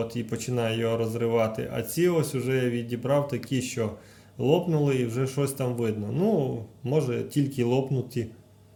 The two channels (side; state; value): both; identical; correlation 1.00